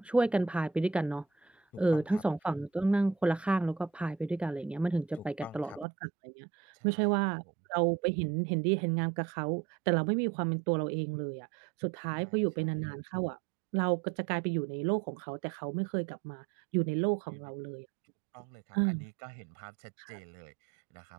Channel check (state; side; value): drops out; left; at 5.9 s